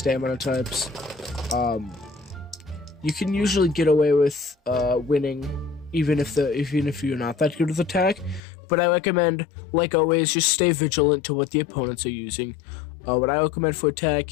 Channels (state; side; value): drops out; right; at 8.4 s